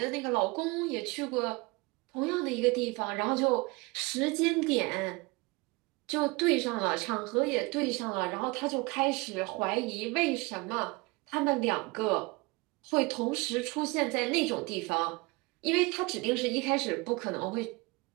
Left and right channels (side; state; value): left; quieter; 25.3 dB